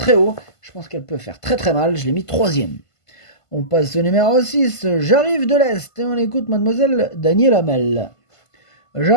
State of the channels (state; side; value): late; right; 1.5 ms